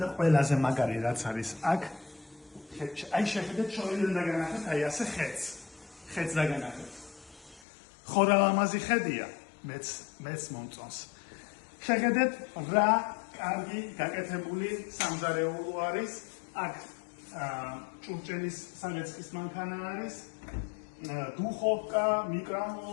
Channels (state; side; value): drops out; right; at 7.7 s